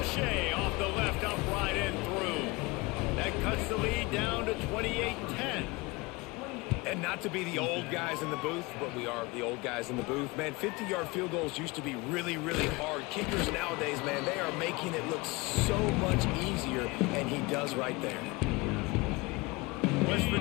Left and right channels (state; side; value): quieter; right; 24.3 dB